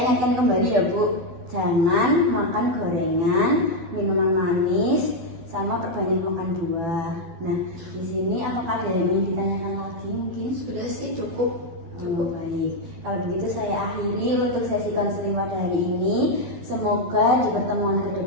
ingatkan kembali ya Bu, jangan makan gorengan, minuman manis, sama perbanyak makan buah. Nah di sini apakah ada yang ingin ditanyakan lagi mungkin? Sudah sih cukup. Oh, baik. Kalau begitu saya akhiri untuk sesi konseling pada hari ini. Semoga di pertemuan ke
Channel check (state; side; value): late; left; 12 ms